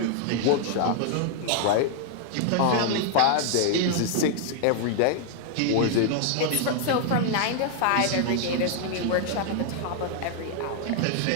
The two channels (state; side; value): different; both; correlation 0.00